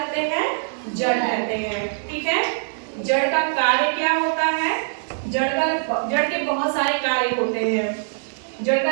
हैं? जड़ कहते हैं। ठीक है? जड़ का कार्य क्या होता है? जड़ के बहुत सारे कार्य होते हैं। जड़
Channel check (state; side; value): silent; left; 64 dB below the other